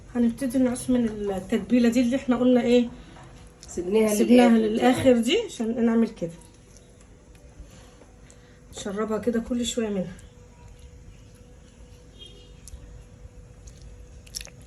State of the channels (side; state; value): both; identical; correlation 1.00